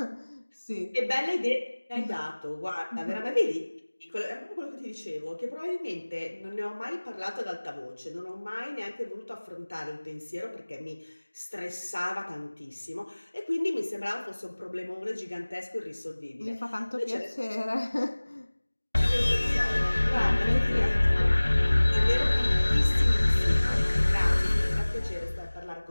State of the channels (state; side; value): inverted; both; correlation -1.00